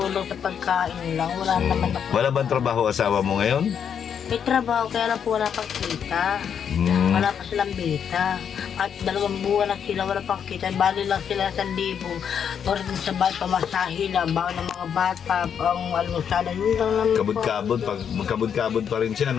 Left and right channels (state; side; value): quieter; right; 7.9 dB